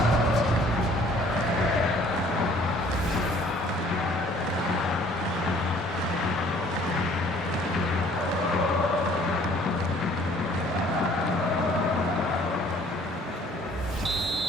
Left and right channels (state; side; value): normal; both; correlation 0.56